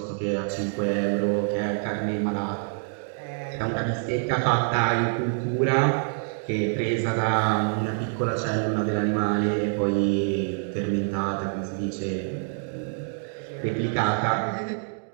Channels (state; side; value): silent; left; 61 dB below the other